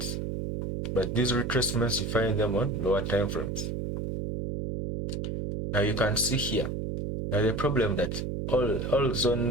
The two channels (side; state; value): right; noise; hum, 3 dB below the sound